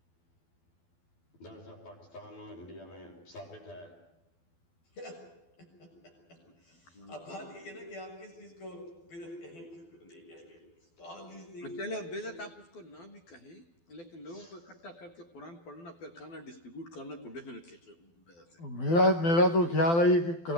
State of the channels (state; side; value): late; right; 12 ms